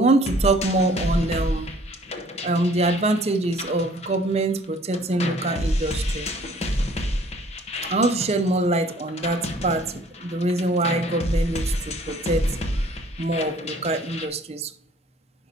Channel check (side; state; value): both; normal; correlation 0.55